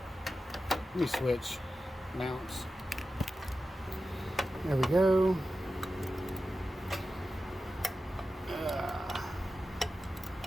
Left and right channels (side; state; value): both; normal; correlation 0.92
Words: Let me switch mounts. There we go.